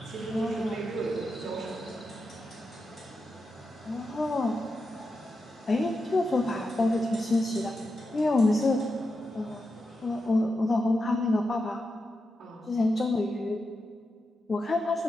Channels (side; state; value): both; normal; correlation 0.88